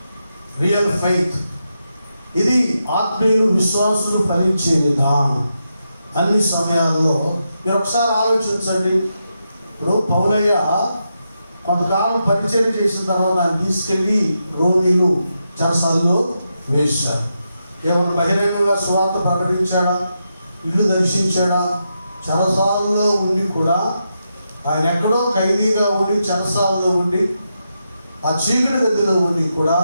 రియల్ ఫెయిత్. ఇది ఆత్మీయులు విశ్వాసులు ఫలించే విధానం. అన్ని సమయాల్లో మీరు ఒకసారి ఆలోచించండి. ఇప్పుడు పౌలయ్య కొంతకాలం పరిచయం చేసిన తర్వాత ఆయన తీసుకెళ్ళి రోమిలు చెరసాల్లో వేశారు. ఏమన్నా బహిరంగంగా సువార్త ప్రకటించాడా? ఇల్లు దర్శించాడా? చెరసాలలో ఉండి కూడా ఆయన ఎక్కడో ఖైదీగా ఉండి చెరసాలలో ఉండి ఆ చీకటి గదిలో ఉండి కూడా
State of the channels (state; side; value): inverted; both; correlation -0.85